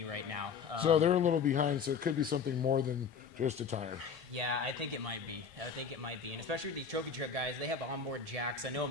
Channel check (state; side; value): quieter; right; 6.0 dB